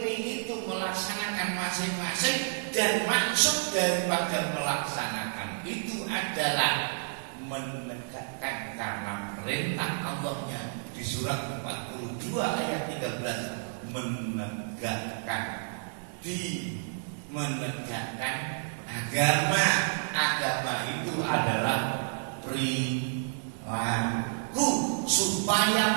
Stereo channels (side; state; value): left; silent; digital silence